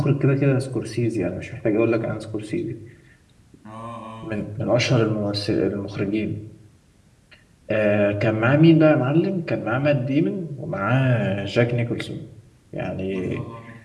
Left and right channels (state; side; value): identical; both; correlation 1.00